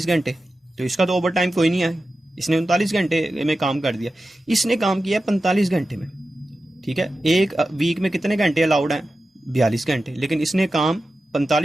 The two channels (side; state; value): both; normal; correlation 0.93